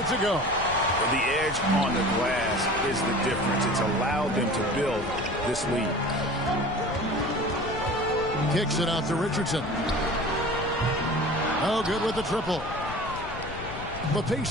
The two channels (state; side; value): noise; left; rumble, 11 dB below the sound